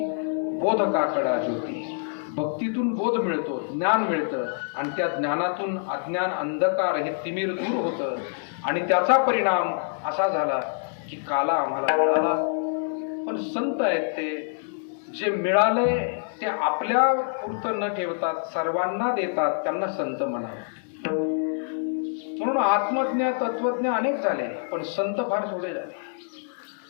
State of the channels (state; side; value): silent; right; digital silence